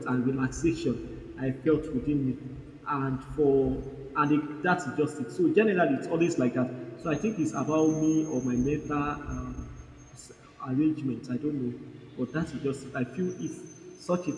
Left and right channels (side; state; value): both; identical; correlation 1.00